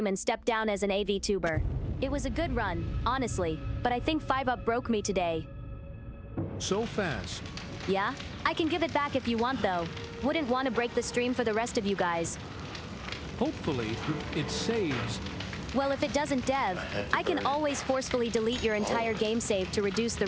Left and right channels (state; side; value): identical; both; correlation 1.00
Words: and step down as an VTuber. It was a good run, honestly, but I think 5-up broke me today. So fast. Yeah? I can give it back if you want though. Wouldn't want to break the stream for the rest of you guys. Hopefully, it saves. Well, if it doesn't, Dev, I can always forcefully delete your entire game save to reduce the